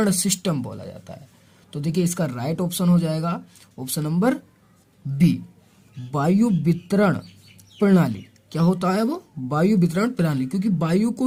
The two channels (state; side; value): identical; both; correlation 1.00